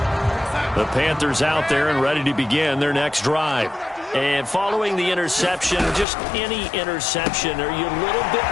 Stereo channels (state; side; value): drops out; right; at 6.1 s